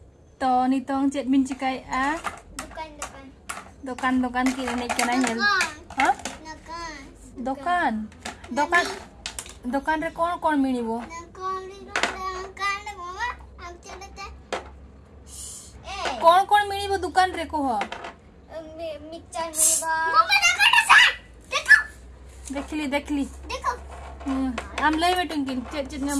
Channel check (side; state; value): both; identical; correlation 1.00